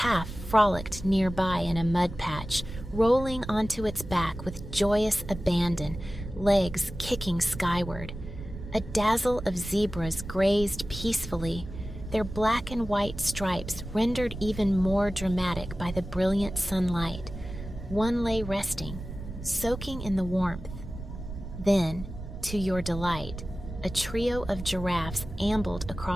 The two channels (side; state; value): right; noise; rumble, 10 dB below the sound